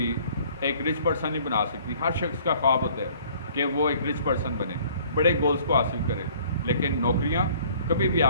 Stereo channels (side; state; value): both; inverted; correlation -0.55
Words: एक रिच पर्सन नहीं बना सकती। हर शख्स का ख्वाब होता है कि वो एक रिच पर्सन बने, बड़े गोल्स को हासिल करे, लेकिन नौकरियाँ कभी भी